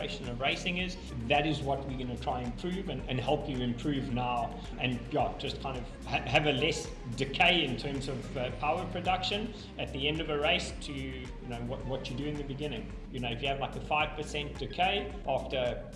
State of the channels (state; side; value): identical; both; correlation 1.00